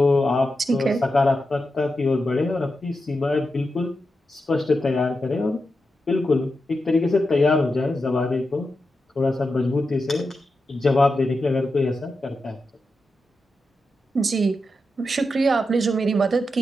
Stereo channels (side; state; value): both; normal; correlation 0.89